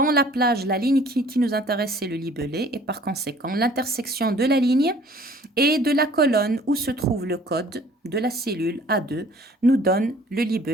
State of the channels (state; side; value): normal; both; correlation 0.54